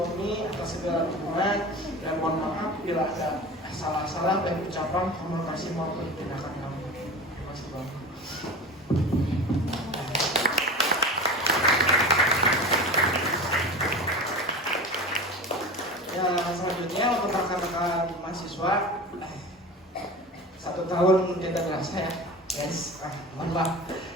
atas segala dukungan, dan mohon maaf bila ada salah-salah baik ucapan, komunikasi maupun tindakan kami. Terima kasih Bomi. Ya, selanjutnya untuk rekan-rekan mahasiswa, 1 tahun tidak terasa ya, guys. Mohon maaf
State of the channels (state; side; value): normal; both; correlation 0.32